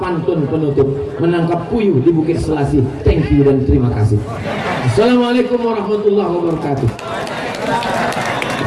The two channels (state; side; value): identical; both; correlation 1.00